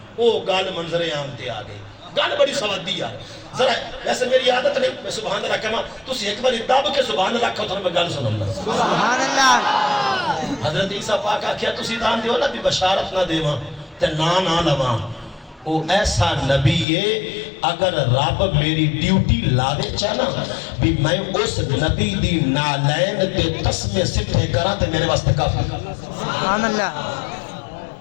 وہ گل منظر عام تے آ گئی. گل بڑی سوادی یار. ذرا ویسے میری عادت نہیں میں سبحان اللہ کہاں، تسی ایک بار دب کے سبحان اللہ کہو تو میں گل سنوں. سبحان اللہ. حضرت عیسیٰ پاک آکھیا تسی دان دیو نا بھی بشارت نہ دیواں تے نہ لواں. وہ ایسا نبی ہے اگر رب میری ڈیوٹی لاوے چاہنا بھی میں اس نبی دی نالین تے تسمے سٹھے کرا تے میرے واسطے کافی. سبحان اللہ.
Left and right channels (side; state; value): right; drops out; at 16.9 s